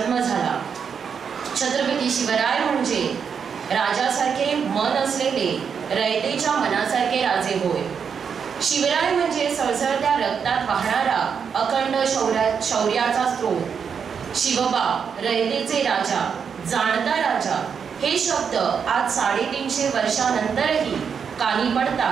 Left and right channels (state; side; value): quieter; left; 6.7 dB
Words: झाला. छत्रपती शिवराय म्हणजे राजासारखे मन असलेले रयतेच्या मनासारखे राजे होय. शिवराय म्हणजे सळसळत्या रक्तात वाहणारा अखंड शौर्याचा स्रोत. शिवबा रयतेचे राजा, जाणता राजा, हे शब्द आज 350 वर्षानंतरही कानी